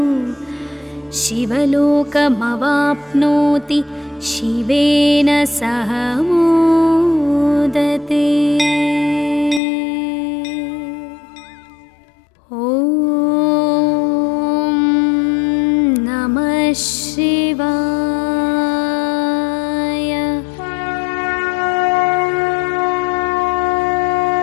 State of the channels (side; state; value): right; drops out; at 9.6 s